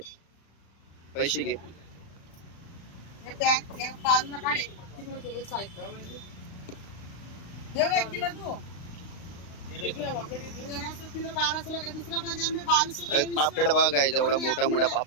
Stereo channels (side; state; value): right; late; 35 ms